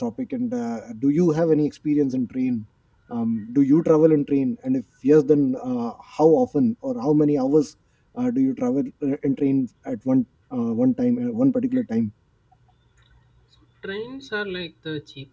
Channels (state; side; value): identical; both; correlation 1.00